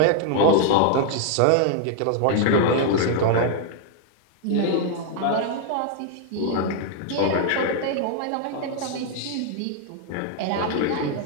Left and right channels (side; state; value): both; different; correlation 0.00